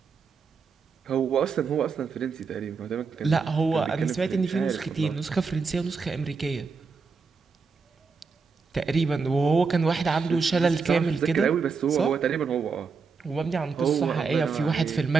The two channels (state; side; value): quieter; left; 5.0 dB